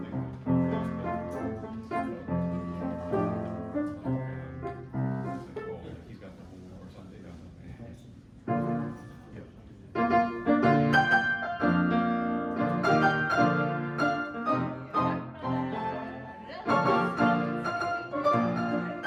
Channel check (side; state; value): both; identical; correlation 1.00